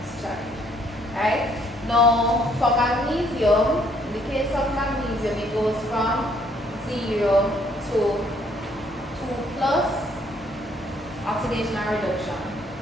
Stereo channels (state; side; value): normal; both; correlation 0.65